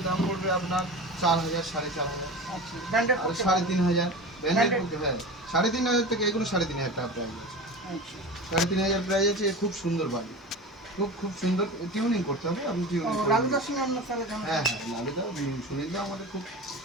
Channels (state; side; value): normal; both; correlation 0.31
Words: দাম পড়বে আপনার 4,000 4,500 আচ্ছা ব্র্যান্ডেড আর 3,500 ব্যান্ডেড করতে। হ্যাঁ 3,500 থেকে এগুলো 3,500 টাকা প্রাইস আছে। আচ্ছা 3,500 প্রাইস আছে। এ খুব সুন্দর বাড়ি, খুব সুন্দর। টিউনিং করতে হবে, আপনি টিউনিং করবেন। লালুদার সঙ্গে আপনার তাহলে জানা হ্যাঁ হ্যাঁ লালুদা সুনীলদা আমাদের খুব